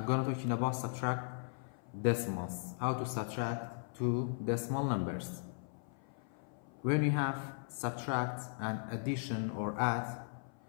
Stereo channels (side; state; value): right; silent; 53 dB below the other